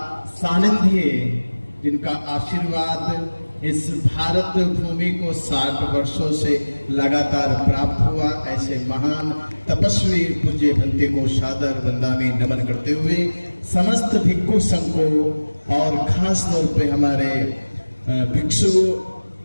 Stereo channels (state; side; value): inverted; both; correlation -1.00